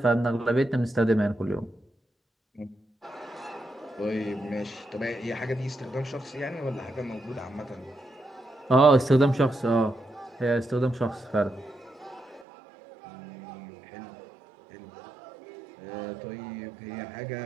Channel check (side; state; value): left; drops out; at 12.5 s